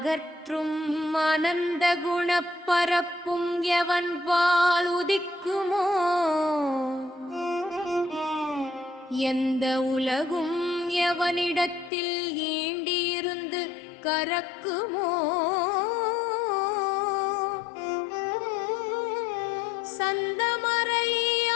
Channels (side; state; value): right; drops out; at 11.9 s